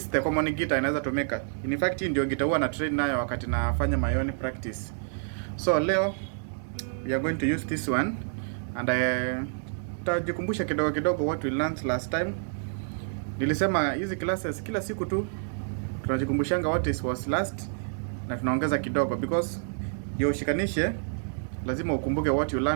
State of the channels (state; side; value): silent; left; digital silence